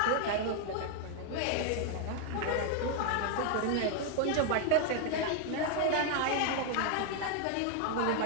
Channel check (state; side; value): different; both; correlation 0.00